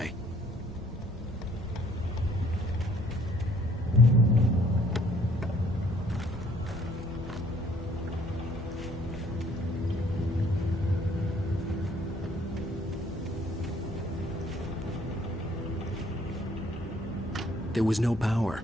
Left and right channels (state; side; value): normal; both; correlation 0.61